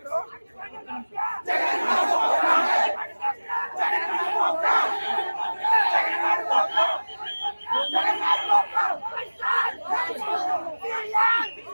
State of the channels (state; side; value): inverted; both; correlation -1.00